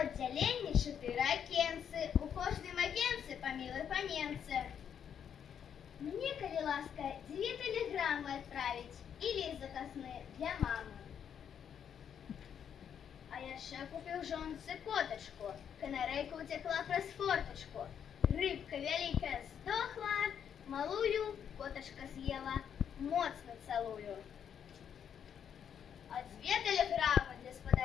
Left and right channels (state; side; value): quieter; right; 8.3 dB